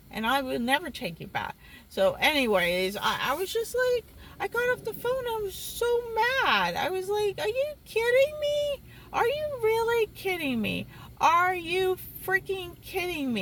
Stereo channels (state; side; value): identical; both; correlation 1.00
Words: and I will never take you back. So anyways, I was just like, I got off the phone. I was so mad. I was like, are you kidding me? Are you really kidding me? Are you freaking kidding